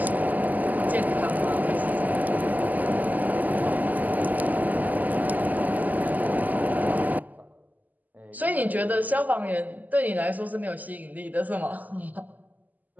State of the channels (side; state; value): left; late; 0.081 ms